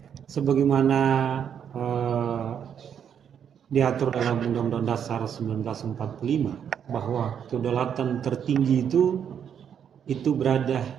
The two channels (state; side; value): quieter; left; 8.3 dB